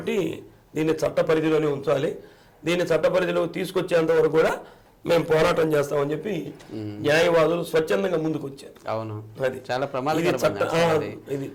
దీన్ని చట్ట పరిధిలోనే ఉంచాలి. దీన్ని చట్ట పరిధిలో తీసుకొచ్చేంత వరకు కూడా మేము పోరాటం చేస్తామని చెప్పి న్యాయవాదులు స్వచ్ఛందంగా ముందుకు వచ్చారు. అవును, అది చాలా ఇది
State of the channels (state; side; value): identical; both; correlation 1.00